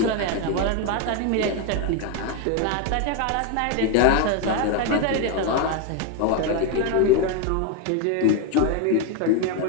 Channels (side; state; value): both; different; correlation 0.01